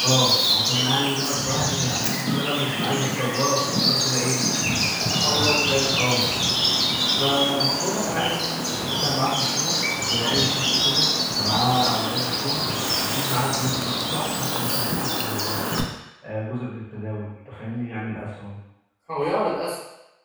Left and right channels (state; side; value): identical; both; correlation 1.00